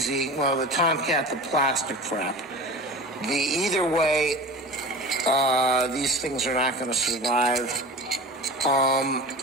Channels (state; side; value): normal; both; correlation 0.33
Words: Well, the tomcat, the plastic trap. Either way, these things are not going to survive.